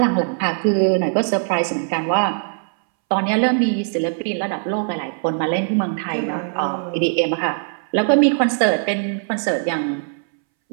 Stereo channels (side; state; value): left; silent; 64 dB below the other